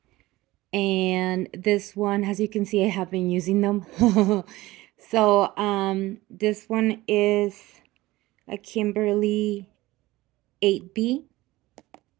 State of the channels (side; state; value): left; quieter; 18.5 dB